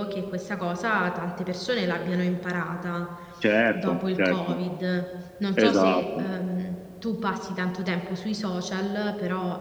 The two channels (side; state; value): both; identical; correlation 1.00